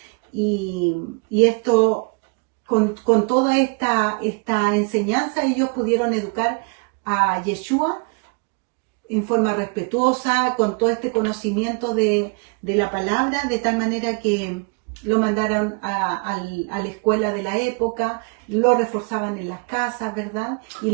y esto, con toda esta enseñanza, ellos pudieron educar a Yeshua en forma respetuosa, con todo este conocimiento de la palabra, de tal manera que lo mandaron a la escuela de la época, lo reforzaban en las casas, ¿verdad? Y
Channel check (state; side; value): quieter; left; 35.5 dB